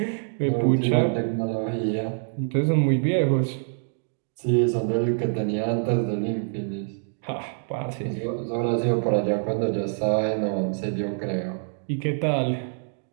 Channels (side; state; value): left; silent; digital silence